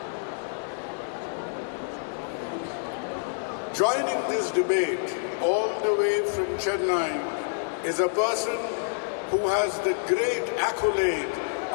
Joining this debate all the way from Chennai is a person who has the great accolade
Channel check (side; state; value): right; silent; digital silence